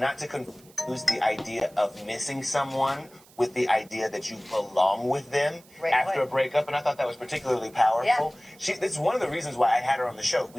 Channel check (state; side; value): noise; right; hiss, 26 dB below the sound